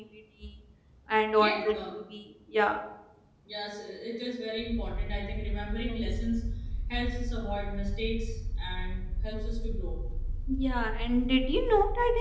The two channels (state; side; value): identical; both; correlation 1.00